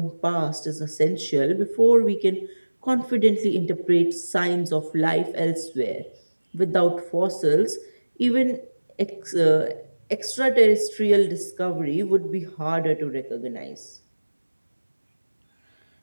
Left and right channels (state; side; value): inverted; both; correlation -1.00